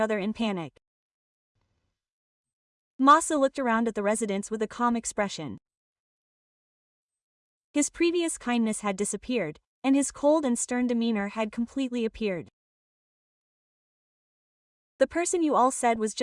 in panic. Masa looked around at the residents with a calm expression. His previous kindness had disappeared, and his cold and stern demeanor had completely appeared. The person you all said was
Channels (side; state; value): both; identical; correlation 1.00